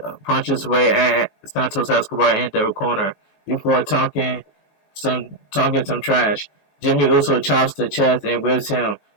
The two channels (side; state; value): right; late; 21 ms